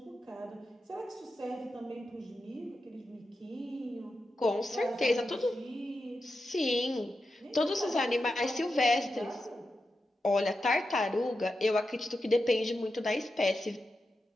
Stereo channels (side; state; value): both; normal; correlation 0.89